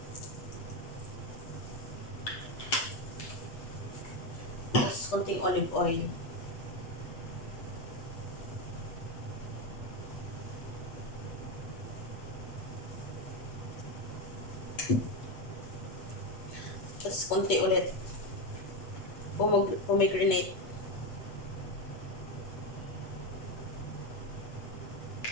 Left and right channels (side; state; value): right; late; 8.1 ms